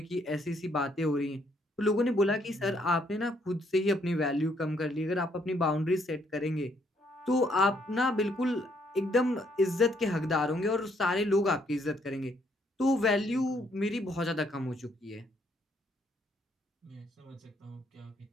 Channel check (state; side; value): normal; both; correlation 0.70